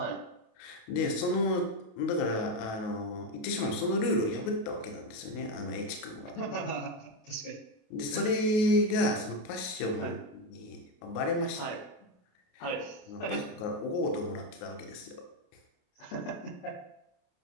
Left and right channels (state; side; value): late; right; 28 ms